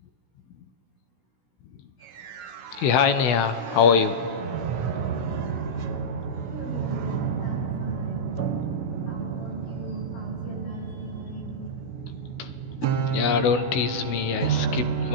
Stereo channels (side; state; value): right; late; 16 ms